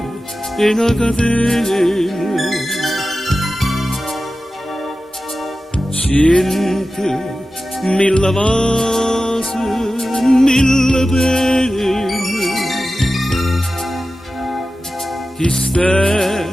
e una catena, mille vasi, mille pene. Chi sta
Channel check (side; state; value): both; normal; correlation 0.94